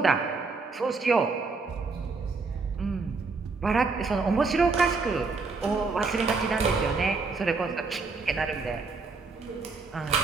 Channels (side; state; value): left; quieter; 4.2 dB